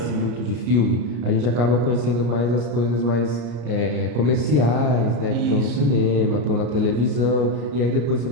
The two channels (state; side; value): late; left; 33 ms